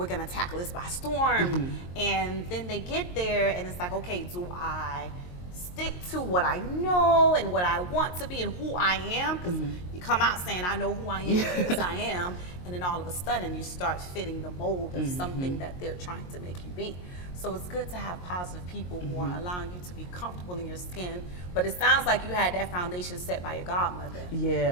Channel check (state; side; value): late; right; 22 ms